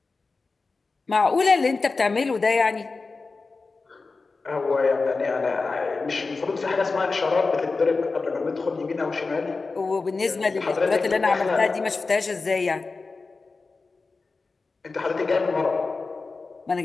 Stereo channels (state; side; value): quieter; right; 4.0 dB